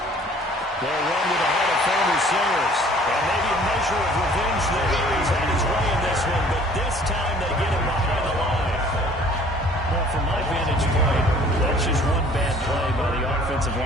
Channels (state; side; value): normal; both; correlation 0.54